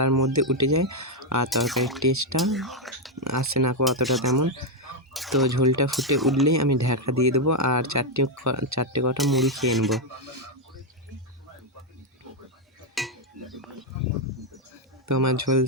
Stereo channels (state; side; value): normal; both; correlation 0.02